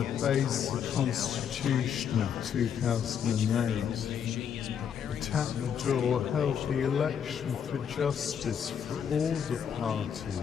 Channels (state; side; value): quieter; right; 8.0 dB